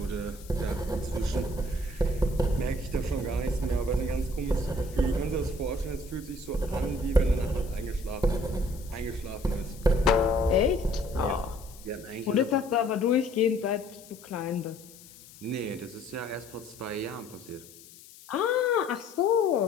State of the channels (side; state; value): left; noise; hiss, 20 dB below the sound